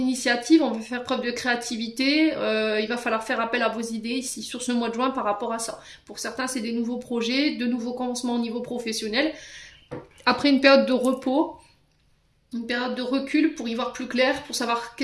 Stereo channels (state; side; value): identical; both; correlation 1.00